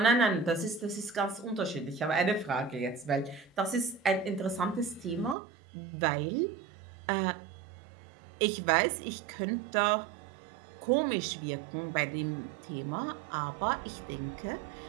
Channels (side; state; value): left; drops out; at 5.4 s